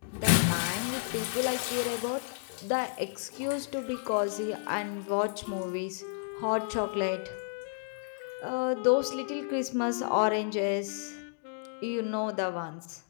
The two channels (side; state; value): right; silent; digital silence